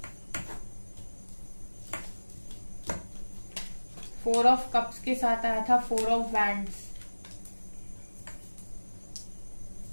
Four of cups के साथ आया था 4 ऑफ वैंड्स,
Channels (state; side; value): inverted; both; correlation -1.00